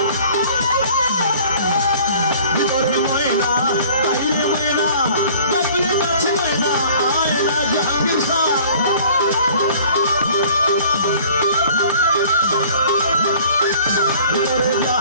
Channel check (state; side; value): inverted; both; correlation -0.50